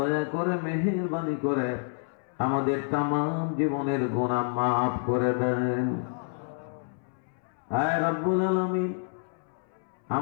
করে মেহেরবানি করে আমাদের তাম জীবনের গুনাহ মাফ করে দেন। হে রব্বুল আলামিন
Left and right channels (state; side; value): silent; right; 59 dB below the other